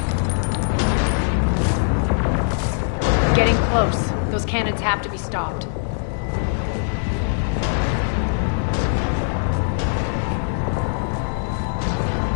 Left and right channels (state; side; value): silent; right; digital silence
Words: Getting close. Those cannons have to be stopped.